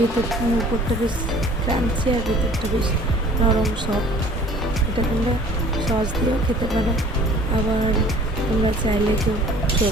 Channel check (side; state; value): both; normal; correlation 0.50